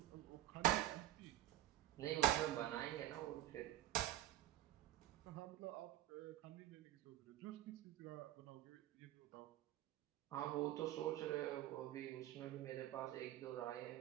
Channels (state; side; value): quieter; left; 14.4 dB